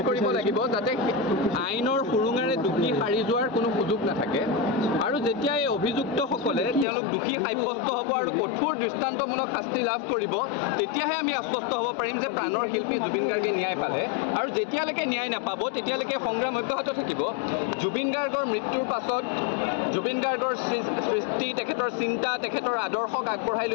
কৰিব লাগিব, যাতে আইনৰ সুৰুঙাৰে দোষী সাৰি যোৱাৰ কোনো সুযোগ নাথাকে। আৰু যেতিয়া এই অভিযুক্তসকলে তেওঁলোক দোষী সাব্যস্ত হ'ব আৰু কঠোৰ দৃষ্টান্তমূলক শাস্তি লাভ কৰিব, তেতিয়াহে আমি আশ্বস্ত হ'ব পাৰিম যে প্ৰাণৰ শিল্পী জুবিন গাৰ্গে ন্যায় পালে। আৰু যেতিয়ালৈকে ন্যায় নাপাব তেতিয়ালৈকে সংগ্ৰাম অব্যাহত থাকিব। জুবিন গাৰ্গৰ মৃত্যুৰ পাছত জুবিন গাৰ্গৰ সৃষ্টি, তেখেতৰ চিন্তা, তেখেতৰ আদৰ্শক আগবঢ়াই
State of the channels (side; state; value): right; drops out; at 6.9 s